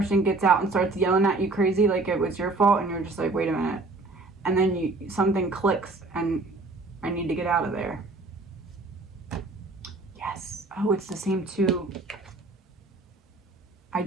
gets out and starts yelling at you crazy like it was your fault, and you're just like, wait a minute. And then something clicks and I need to get out of there. Yes. Oh, it's the same too. I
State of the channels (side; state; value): left; quieter; 3.3 dB